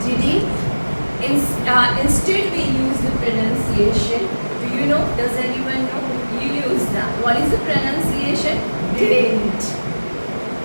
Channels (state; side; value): inverted; both; correlation -1.00